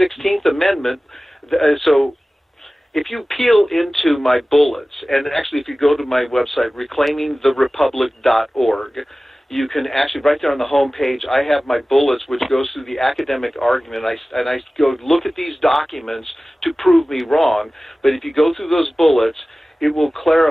Amendment, so if you peel into my bullets, and actually if you go to my website, reclaimingtherepublic.org, you can actually, right there on the home page, I have my bullets, which goes through the academic argument. And I go look at these documents to prove me wrong. But if you go through those bullets, it will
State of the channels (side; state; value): both; normal; correlation 0.97